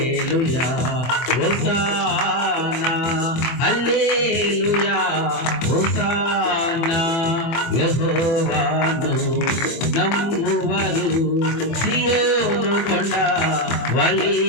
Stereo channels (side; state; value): right; late; 24 ms